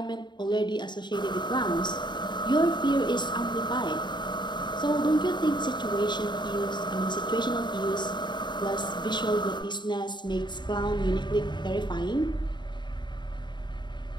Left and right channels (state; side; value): late; right; 0.22 ms